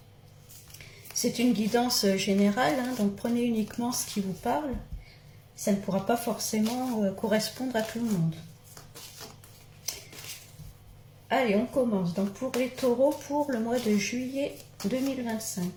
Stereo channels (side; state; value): both; identical; correlation 1.00